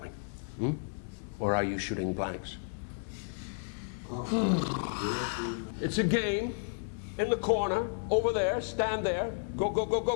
Hmm? Or are you shooting blanks? It's a game. In the corner, over there, stand there. Go, go, go, go,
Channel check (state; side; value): silent; right; digital silence